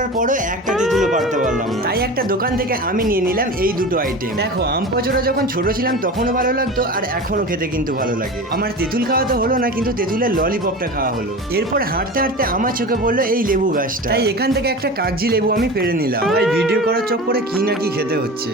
পরও একটা তেঁতুলও পারতে পারলাম না। তাই একটা দোকান থেকে আমি নিয়ে নিলাম এই দুটো আইটেম। দেখো আম পচড়া যখন ছোট ছিলাম তখনও ভালো লাগতো, আর এখনো খেতে কিন্তু ভালো লাগে। আমার তেঁতুল খাওয়া তো হলো না, কিন্তু তেঁতুলের ললিপপটা খাওয়া হলো। এরপর হাঁটতে হাঁটতে আমার চোখে পড়লো এই লেবু গাছটা, তাই এখান থেকে একটা কাগজি লেবু আমি পেরে নিলাম। ভাই ভিডিও করার চক্করে কি না কি খেতে হচ্ছে।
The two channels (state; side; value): normal; both; correlation 0.31